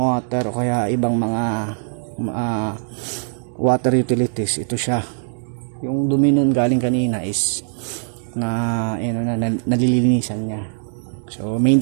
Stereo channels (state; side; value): silent; left; digital silence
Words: o kaya ibang mga water utilities. Ito siya. Yung dumi nun galing kanina is nalilinisan niya. So